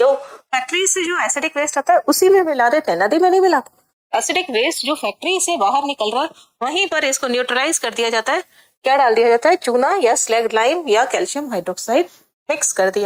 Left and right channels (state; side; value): identical; both; correlation 1.00